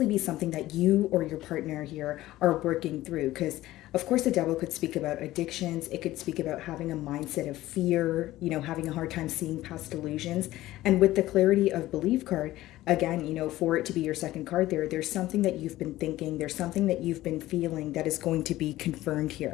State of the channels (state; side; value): quieter; right; 16.0 dB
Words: be something that you or your partner here are working through. Because, of course, the devil could speak about addictions. It could speak about having a mindset of fear, having a hard time seeing past delusions. And with the clarity of belief card, again, for it to be your second card there's something that you've been thinking, there's something that you've been feeling that is going to be confirmed